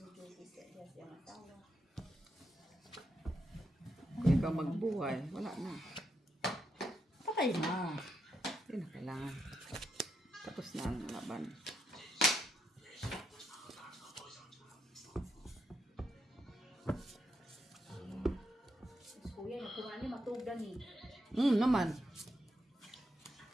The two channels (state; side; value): normal; both; correlation 0.82